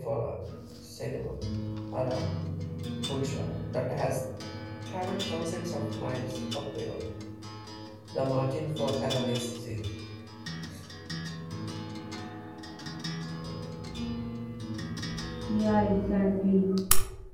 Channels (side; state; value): both; identical; correlation 1.00